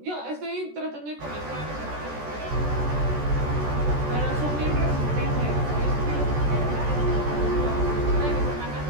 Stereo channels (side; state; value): left; late; 14 ms